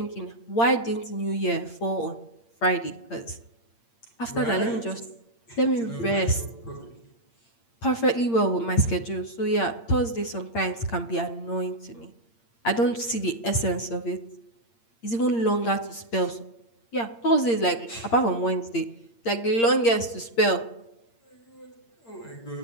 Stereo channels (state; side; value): late; right; 8.7 ms